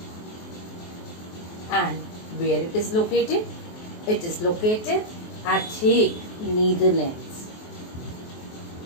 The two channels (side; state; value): right; late; 23 ms